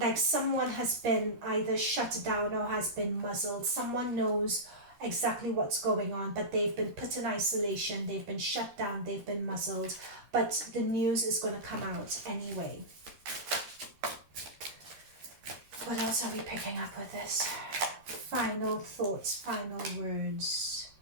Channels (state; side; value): late; left; 13 ms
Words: someone has been either shut down or has been muzzled. Someone knows exactly what's going on, but they've been put in isolation. They've been shut down. They've been muzzled. But the news is going to come out anyway. What else are we picking up with this? Final thoughts, final words.